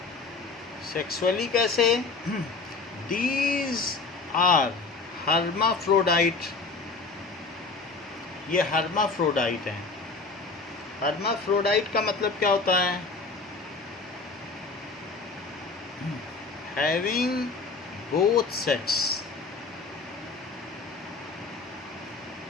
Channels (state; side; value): quieter; right; 4.1 dB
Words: कैसे? These are hermaphrodite, ये hermaphrodite हैं। hermaphrodite का मतलब क्या होता है? having both sex